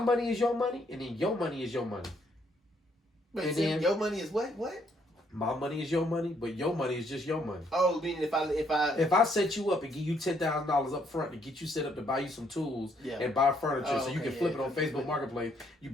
is your money, and then your money is your money. But and then your money is what? My money is your money, but your money is just your money. Oh, meaning if I set you up and give you $10,000 up front to get you set up to buy you some tools and buy furniture so you can flip it on Facebook Marketplace, you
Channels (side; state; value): both; normal; correlation 0.70